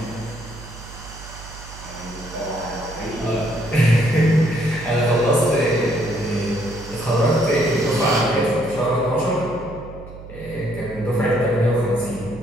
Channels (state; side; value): noise; right; hum, 15 dB below the sound